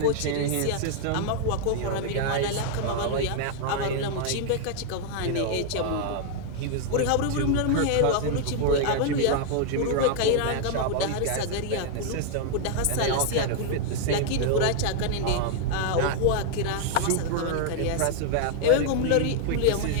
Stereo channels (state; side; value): different; both; correlation 0.00